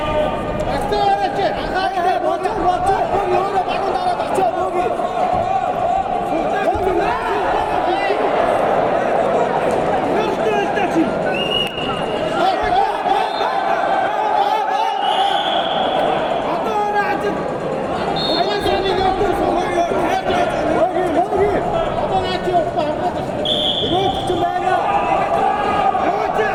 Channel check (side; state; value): both; identical; correlation 1.00